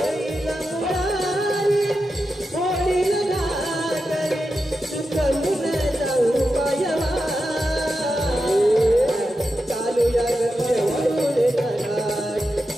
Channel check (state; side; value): normal; both; correlation 0.89